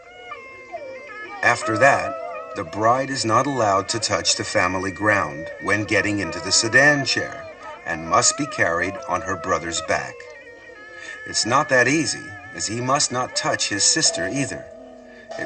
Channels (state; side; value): identical; both; correlation 1.00